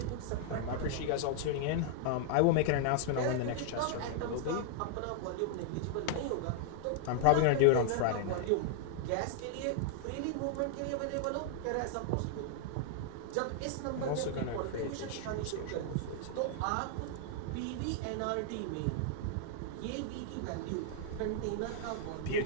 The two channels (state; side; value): different; both; correlation 0.00